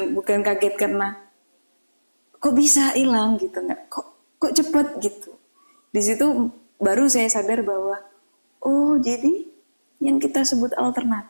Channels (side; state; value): both; inverted; correlation -1.00